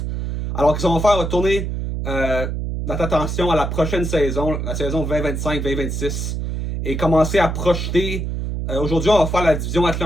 Alors qu'est-ce qu'on va faire? On va tourner notre attention à la prochaine saison, la saison 2025-2026, et commencer à projeter. Aujourd'hui, on va faire la division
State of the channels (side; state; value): right; noise; hum, 3 dB below the sound